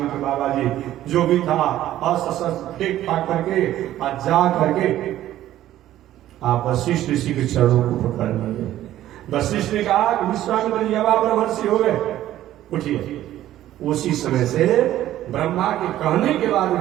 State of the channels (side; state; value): left; quieter; 13.3 dB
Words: बाबा जी, जो भी था अस्त्र फेंक फाक करके और जा करके आप वशिष्ठ ऋषि के चरणों को पकड़ लिए। वशिष्ठ ने कहा कि विश्वामित्र जी अब आप ब्रह्मर्षि हो गए, उठिए। उसी समय से ब्रह्मा के कहने के बाद